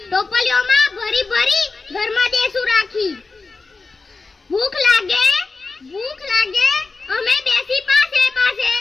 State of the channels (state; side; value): quieter; right; 4.0 dB